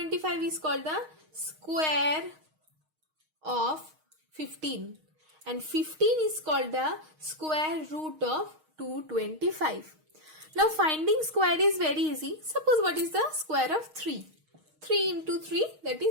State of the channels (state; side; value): late; left; 6.4 ms